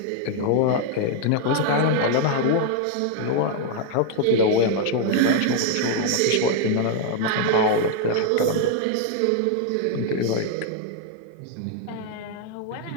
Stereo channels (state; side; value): different; both; correlation 0.00